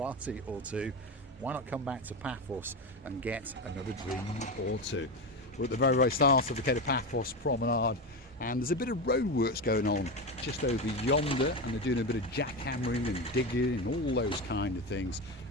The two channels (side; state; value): both; normal; correlation 0.17